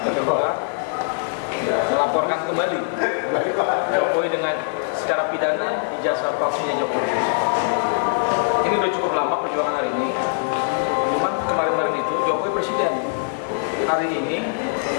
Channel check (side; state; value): right; silent; digital silence